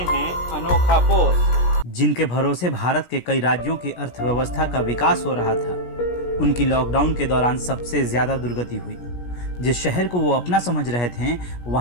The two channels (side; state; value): right; late; 17 ms